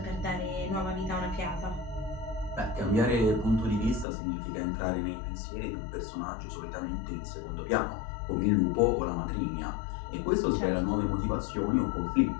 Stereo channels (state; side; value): drops out; right; at 4.0 s